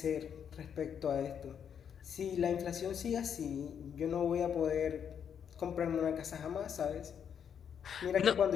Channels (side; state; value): right; quieter; 8.0 dB